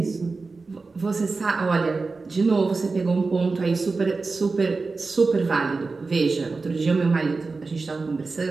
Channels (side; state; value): left; quieter; 4.0 dB